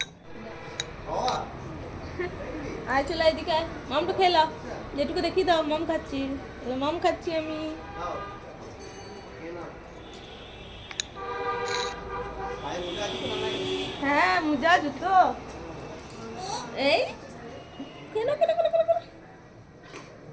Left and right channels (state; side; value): identical; both; correlation 1.00